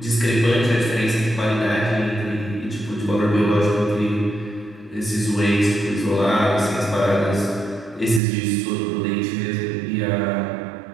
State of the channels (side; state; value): left; drops out; at 8.2 s